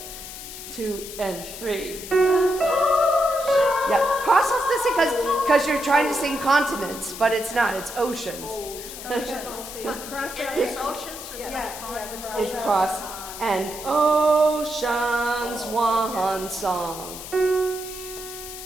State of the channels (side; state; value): left; noise; hiss, 11 dB below the sound